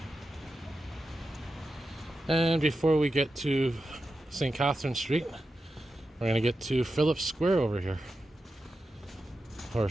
And before we get to St. Catherine Street, we're gonna get to Phillips Square over here, or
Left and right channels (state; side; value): normal; both; correlation 0.91